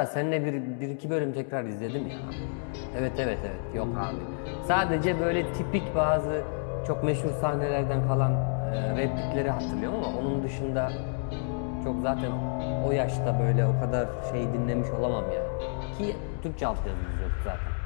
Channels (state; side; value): silent; right; digital silence